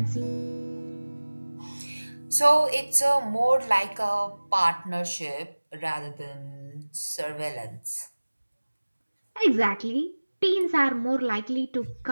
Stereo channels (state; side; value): inverted; both; correlation -1.00